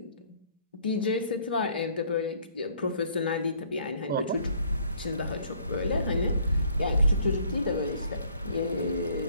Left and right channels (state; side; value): inverted; both; correlation -0.61